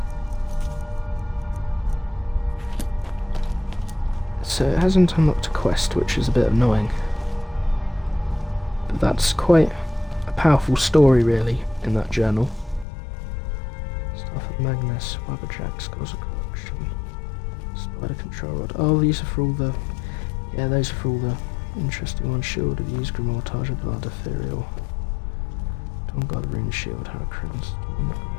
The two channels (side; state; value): right; drops out; at 12.9 s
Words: so it hasn't unlocked a quest, which is a bit annoying. But that's quite a powerful story, really, in that journal. Staff of Magnus, Wabberjack, Scores of Corruption, Spider Control Rod. Oh, these are for all the... Yeah, those are for all the interesting ones. Shield of Use, Grimoire, of Blood, Ethereal. Dawn God, Rune Shield, Hurricanes. Oh my god.